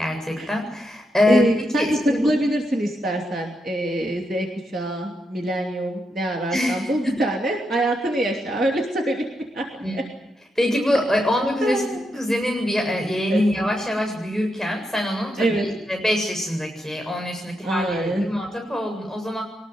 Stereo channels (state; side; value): normal; both; correlation 0.83